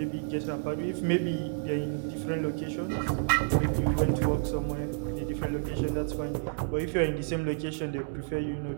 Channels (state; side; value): silent; left; 58 dB below the other